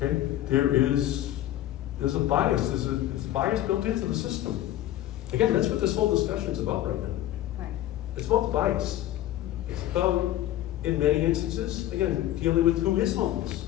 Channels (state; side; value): quieter; right; 13.6 dB